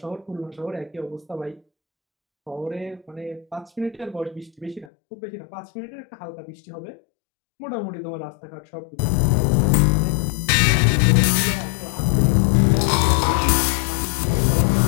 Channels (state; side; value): drops out; right; at 4.9 s